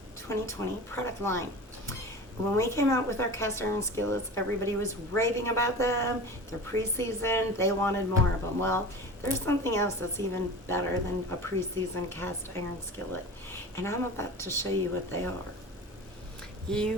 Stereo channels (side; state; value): both; normal; correlation 0.34